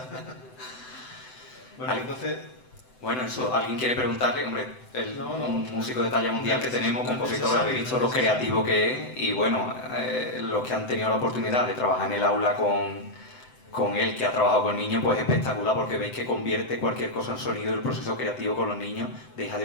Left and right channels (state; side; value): late; right; 7.9 ms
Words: Bueno, entonces... Bueno, eso, alguien quiere preguntarle, hombre, un músico de talla mundial que tenemos, compositor, habéis visto lo creativo que es y bueno, los que han tenido la oportunidad de trabajar en el aula con con él, que ha trabajado con niños, pues es espectacular porque veis que convierte cualquier cosa en sonido y el proceso creativo con los niños deja